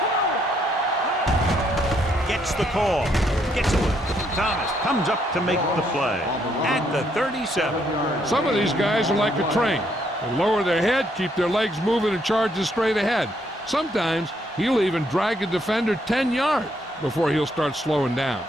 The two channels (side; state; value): both; normal; correlation 0.72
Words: Gets the call. Gets away. Thomas comes up to make the play at the 37. Some of these guys are like a train. They lower their head, keep their legs moving, and charge straight ahead. Sometimes he'll even drag a defender 10 yards before he'll start slowing down.